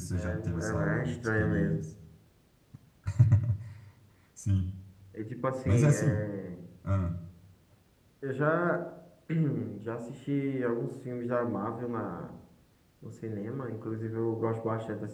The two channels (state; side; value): identical; both; correlation 1.00